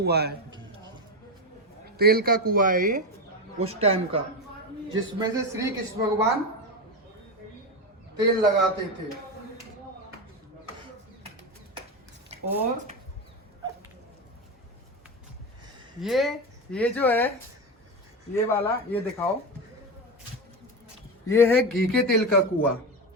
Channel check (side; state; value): both; normal; correlation 0.17